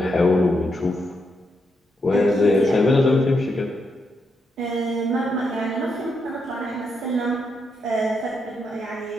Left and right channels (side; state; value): both; normal; correlation 0.81